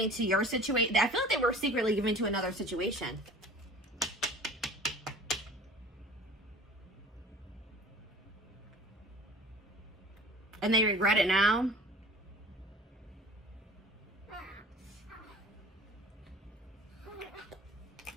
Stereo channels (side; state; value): both; normal; correlation 0.45